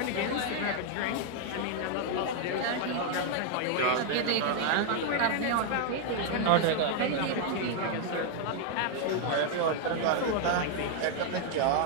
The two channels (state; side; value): different; both; correlation 0.00